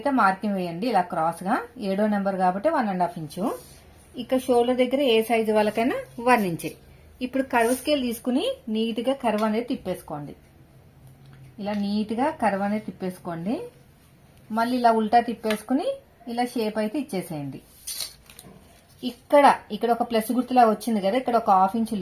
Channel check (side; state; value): both; identical; correlation 1.00